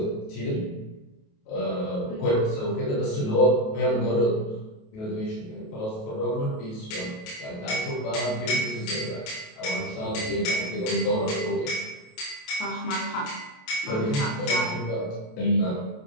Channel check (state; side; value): late; right; 28 ms